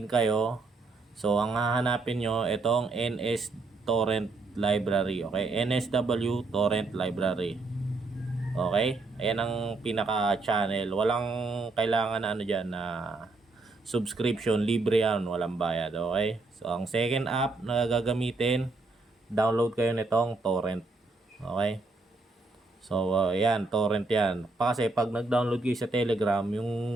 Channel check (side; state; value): left; quieter; 3.5 dB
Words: kayo. So, ang hahanapin nyo, itong NS Torrent Library, okay? NSW Torrent Library. Okay? Ayan ang pinaka-channel. Walang kailangan na ano dyan na subscription. Libre yan. Walang bayad. Okay? So, ang second app na gagamitin, download kayo nitong torrent. Okay? So, yan. Torrent yan. Kasi pag nag-download kayo sa Telegram, yung